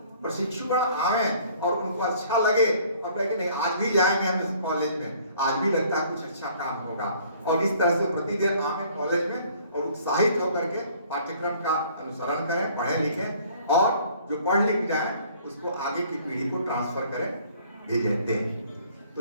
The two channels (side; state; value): both; inverted; correlation -0.57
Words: प्रशिक्षुगण आवे और उनको अच्छा लगे और कहे कि नहीं आज भी जाएंगे हम इस कॉलेज में, आज भी लगता है कुछ अच्छा काम होगा, और इस तरह से प्रतिदिन आवे कॉलेज में और उत्साहित होकर के पाठ्यक्रम का अनुसरण करें, पढ़ें लिखें, और जो पढ़ लिख जाए उसको आगे की पीढ़ी को ट्रांसफर करें, भेजें, दें।